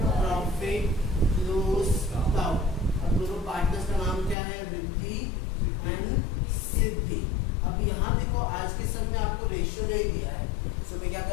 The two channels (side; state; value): right; drops out; at 4.4 s